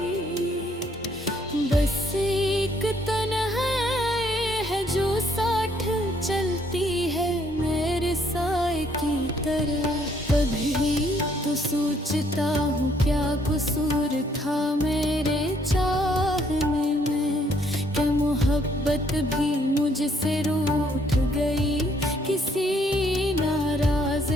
बस एक तन्हाई है जो साथ चलती है मेरे साए की तरह। कभी तो सोचता हूँ क्या कसूर था मेरे चाहने में, क्या मोहब्बत भी मुझसे रूठ गई किसी नाराज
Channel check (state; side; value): normal; both; correlation 0.67